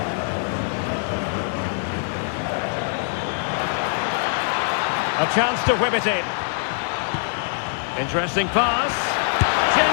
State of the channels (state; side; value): silent; right; 63 dB below the other